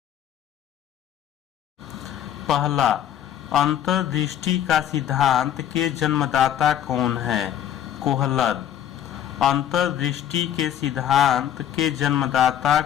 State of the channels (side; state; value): right; quieter; 10.4 dB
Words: पहला, अंतर्दृष्टि का सिद्धांत के जन्मदाता कौन है? कोहलर। अंतर्दृष्टि के सिद्धांत के जन्मदाता